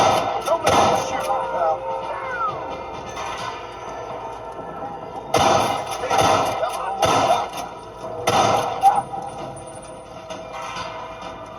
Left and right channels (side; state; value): both; identical; correlation 1.00